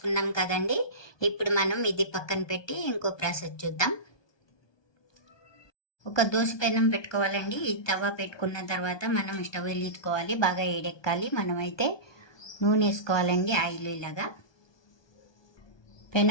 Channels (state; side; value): late; right; 1.2 ms